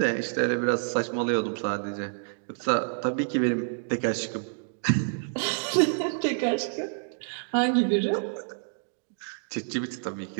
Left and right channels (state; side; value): silent; left; digital silence